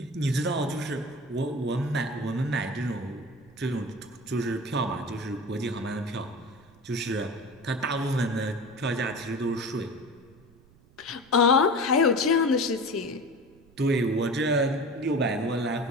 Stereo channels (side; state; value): right; noise; rumble, 27 dB below the sound